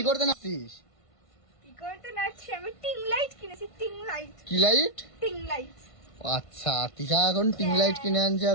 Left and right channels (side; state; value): right; late; 1.5 ms